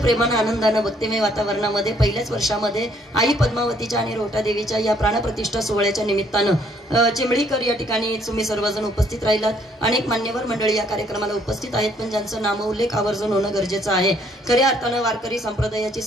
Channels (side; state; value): both; normal; correlation 0.65